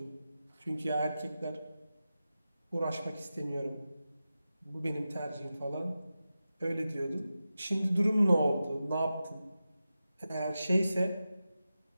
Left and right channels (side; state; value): both; inverted; correlation -0.92